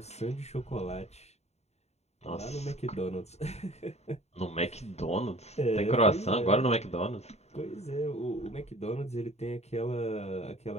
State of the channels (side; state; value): right; late; 0.31 ms